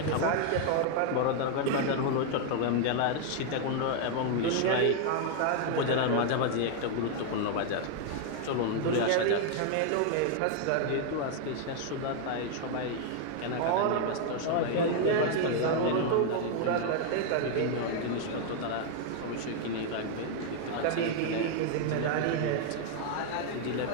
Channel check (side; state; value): both; different; correlation 0.00